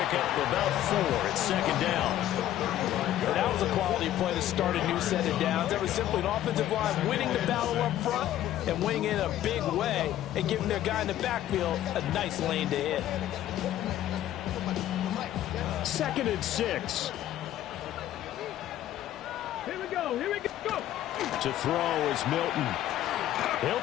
up about 4 at 2nd down. And that was a quality play to start a new set of downs. That was simply an offensive line winning the battle up front and winning in a big way and giving their guy in the backfield a nice lane to hit. 2nd and 6. Here we go. Here we go. To throw is Milton. He'll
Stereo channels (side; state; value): right; quieter; 12.7 dB